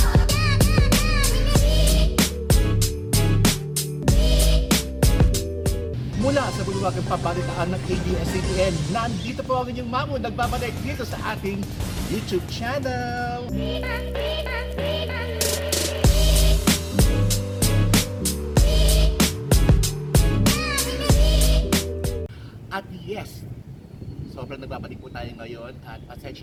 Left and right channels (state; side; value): identical; both; correlation 1.00